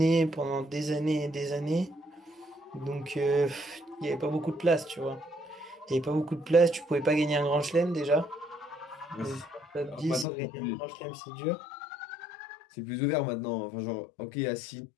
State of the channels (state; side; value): drops out; right; at 10.2 s